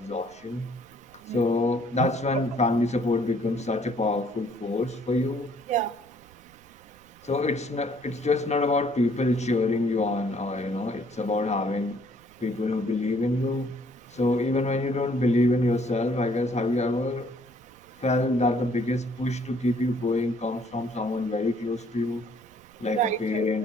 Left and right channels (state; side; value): noise; right; rumble, 28 dB below the sound